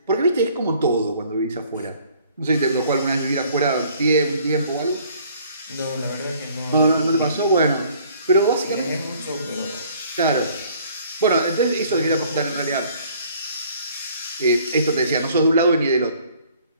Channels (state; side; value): inverted; both; correlation -0.57